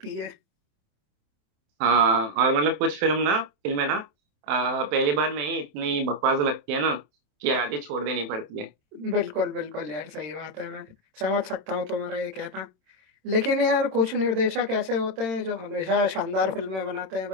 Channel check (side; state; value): left; late; 26 ms